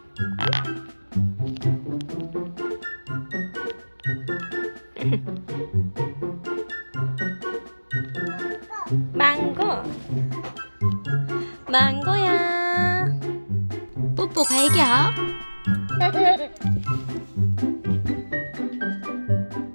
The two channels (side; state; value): both; inverted; correlation -1.00